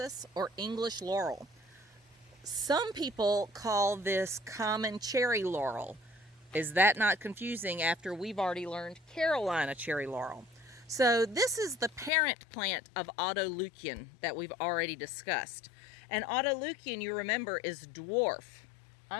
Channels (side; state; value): right; drops out; at 12.1 s